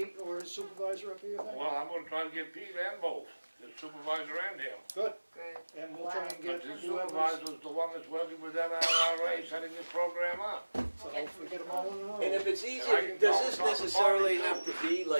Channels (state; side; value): inverted; both; correlation -1.00